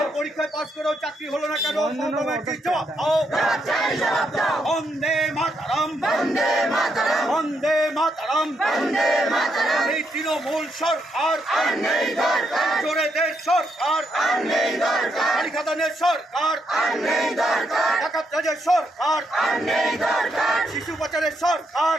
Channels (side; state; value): both; normal; correlation 0.78